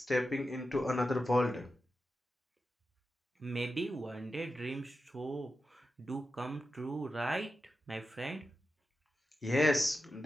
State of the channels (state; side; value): normal; both; correlation 0.91